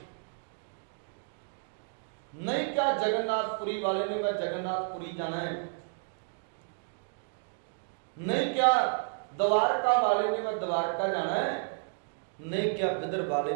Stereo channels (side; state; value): left; silent; digital silence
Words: नहीं क्या जगन्नाथपुरी वाले ने मैं जगन्नाथपुरी जाना है, नहीं क्या द्वारका वाले ने मैं द्वारका जाना है, नहीं क्या बिदर वाले